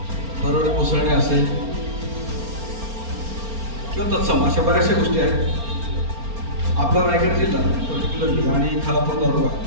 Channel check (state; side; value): late; left; 4.3 ms